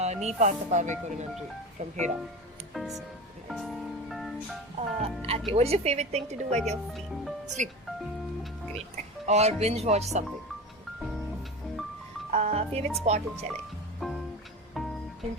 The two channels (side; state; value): both; normal; correlation 0.29